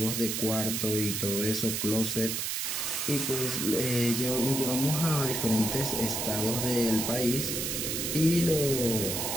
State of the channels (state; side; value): noise; right; hiss, 1 dB below the sound